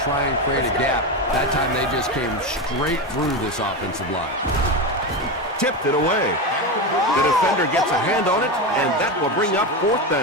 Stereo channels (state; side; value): normal; both; correlation 0.17